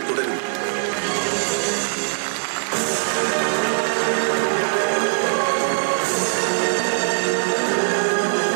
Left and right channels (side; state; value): left; silent; digital silence